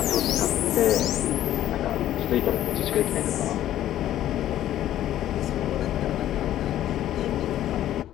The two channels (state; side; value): quieter; right; 12.5 dB